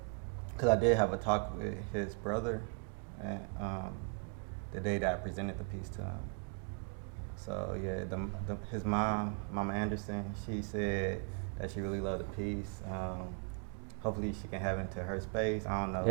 Because I did have a talk with his brother, and the day that I presented the piece to him. So yeah, his mom, Mama Anderson, she said that she really loved the piece. Hopefully she can have it into her space. I don't know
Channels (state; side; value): quieter; left; 36.7 dB